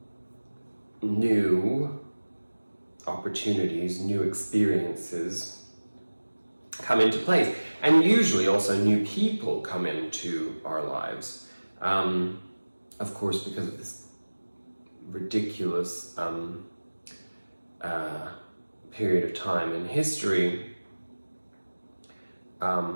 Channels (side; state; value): both; inverted; correlation -1.00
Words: new opportunities, new experiences come into place. And usually also new people come into our lives. Of course, because of this ridiculous period of time in history,